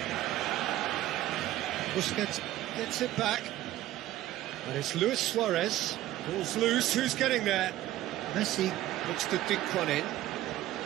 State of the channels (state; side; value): quieter; left; 14.6 dB